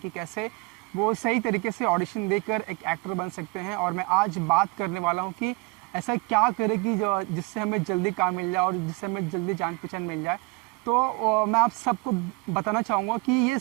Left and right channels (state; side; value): quieter; left; 26.4 dB